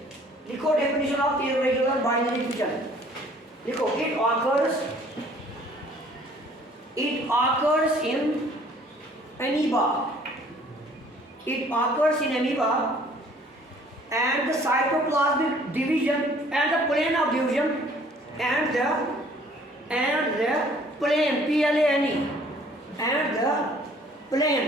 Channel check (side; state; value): both; normal; correlation 0.56